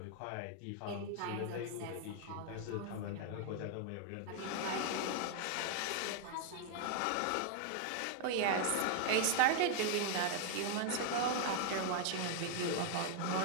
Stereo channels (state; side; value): different; both; correlation 0.00